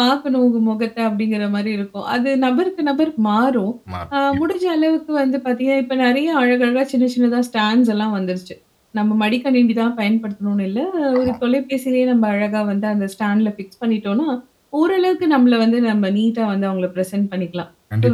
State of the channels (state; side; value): identical; both; correlation 1.00